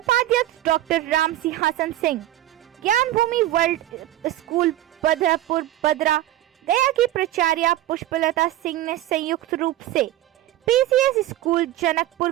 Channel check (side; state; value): left; quieter; 14.4 dB